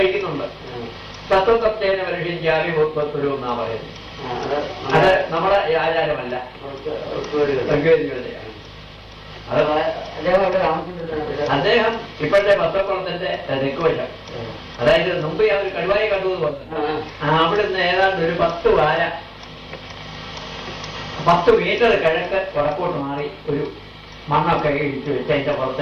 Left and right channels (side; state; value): both; identical; correlation 1.00